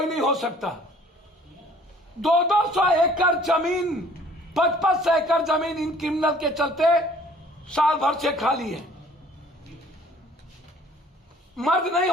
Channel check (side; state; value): both; normal; correlation 0.55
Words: नहीं हो सकता। 200 एकड़ जमीन, 55 एकड़ जमीन इन क्रिमिनल के चलते साल भर से खाली है। मर्द नहीं